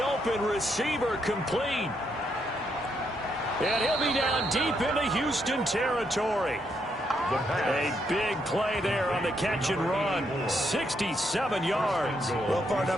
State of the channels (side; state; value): both; normal; correlation 0.77